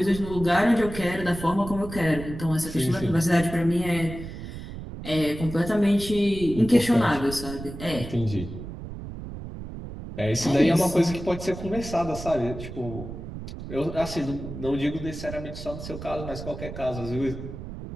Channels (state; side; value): noise; right; rumble, 10 dB below the sound